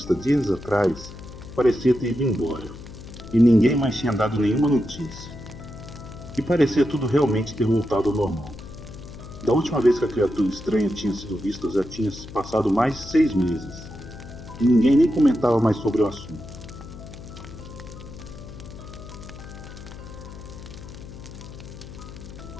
dias atrás parecia ter ido embora, e ninguém mais tinha dado nenhuma notícia. E parecia tudo realmente ter voltado ao normal. Da última vez que a criatura estranha tinha sido vista já tinha se passado mais de 6 meses, e ninguém nem comentava mais sobre o assunto.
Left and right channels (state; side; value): noise; left; hum, 14 dB below the sound